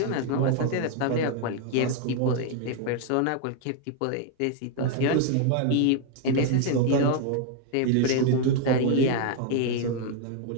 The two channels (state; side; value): different; both; correlation 0.00